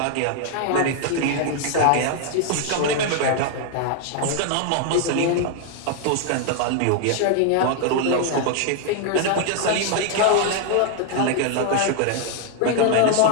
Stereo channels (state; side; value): different; both; correlation 0.00